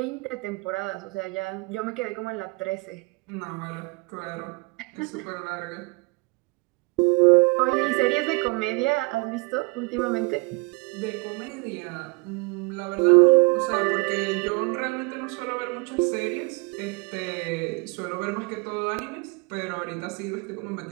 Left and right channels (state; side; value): quieter; left; 28.4 dB